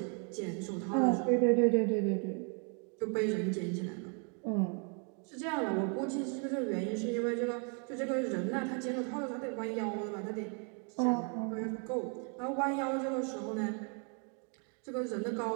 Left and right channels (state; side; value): quieter; left; 39.5 dB